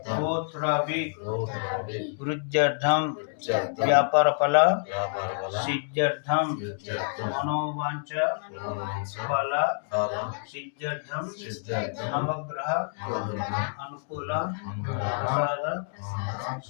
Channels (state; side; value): silent; right; digital silence